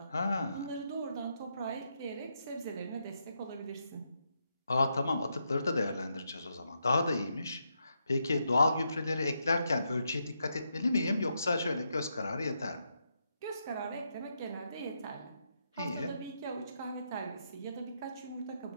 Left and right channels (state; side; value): inverted; both; correlation -0.81